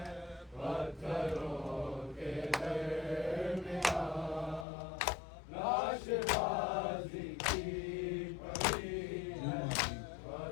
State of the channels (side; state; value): right; drops out; at 4.7 s